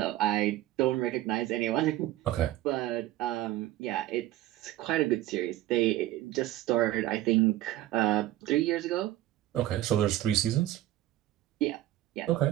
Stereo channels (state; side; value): quieter; left; 14.9 dB